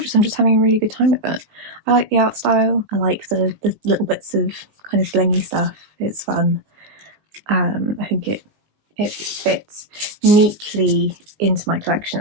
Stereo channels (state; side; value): late; left; 19 ms